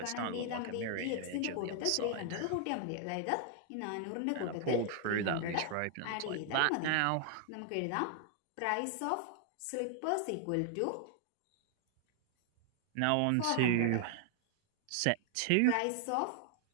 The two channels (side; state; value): both; different; correlation 0.00